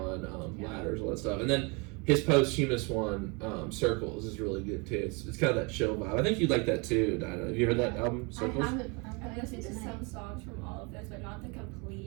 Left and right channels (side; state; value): left; quieter; 30.5 dB